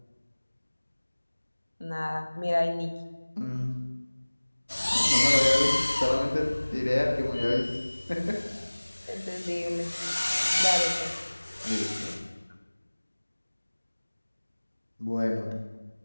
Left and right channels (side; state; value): both; inverted; correlation -1.00